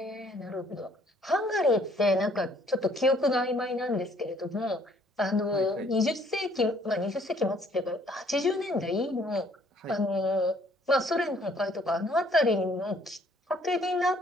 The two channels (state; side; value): normal; both; correlation 0.62